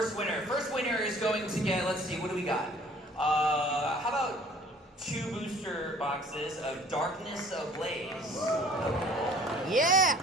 winner is going to get, let's see, what do we got? How about 2 booster boxes of Darkness Ablaze. Yeah.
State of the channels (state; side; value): normal; both; correlation 0.53